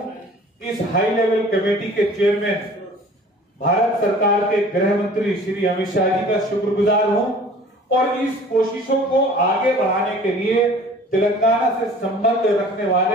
इस हाई लेवल कमेटी के चेयरमैन भारत सरकार के गृह मंत्री श्री अमित शाह जी का शुक्रगुजार हूं, और इस कोशिशों को आगे बढ़ाने के लिए तेलंगाना से संबंध रखने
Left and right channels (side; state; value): both; normal; correlation 0.47